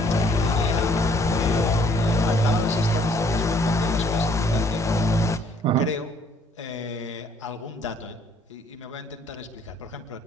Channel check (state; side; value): normal; both; correlation 0.63